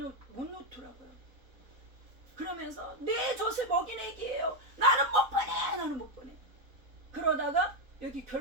그러면서 내 젖을 먹인 애기예요. 나는 못 보내. 그러다가 여기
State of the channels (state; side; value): late; left; 4.0 ms